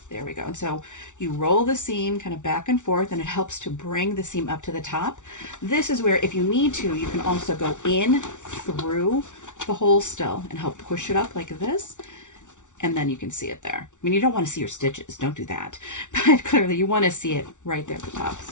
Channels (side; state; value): right; late; 0.86 ms